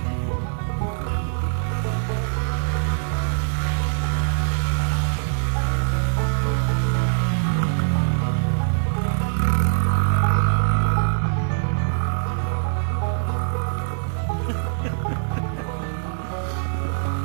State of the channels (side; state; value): left; silent; 63 dB below the other